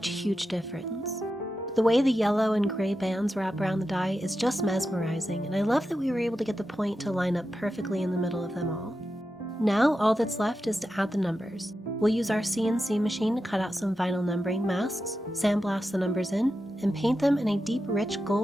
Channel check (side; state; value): both; normal; correlation 0.90